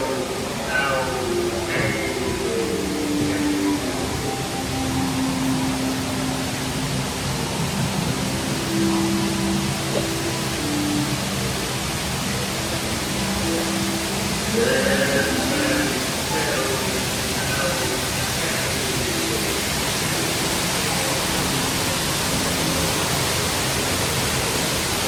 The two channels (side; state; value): both; identical; correlation 1.00